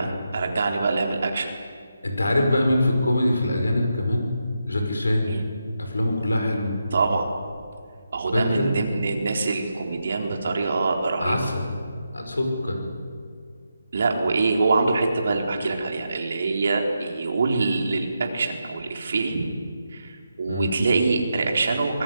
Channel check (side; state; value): both; inverted; correlation -0.86